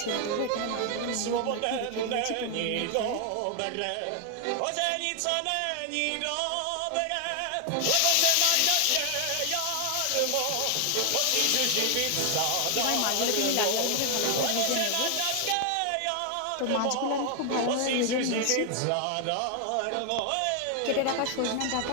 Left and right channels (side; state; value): both; different; correlation 0.00